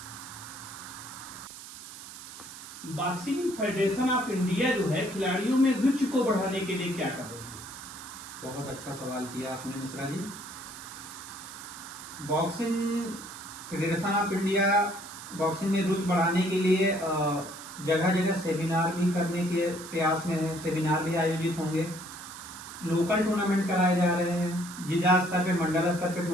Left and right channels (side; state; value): right; noise; hiss, 14 dB below the sound